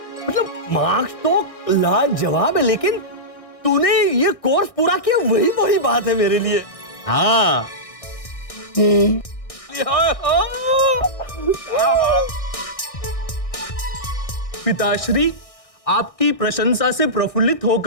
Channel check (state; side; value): late; right; 1.6 ms